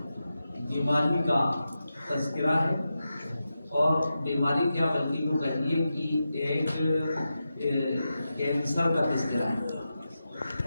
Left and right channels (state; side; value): inverted; both; correlation -0.90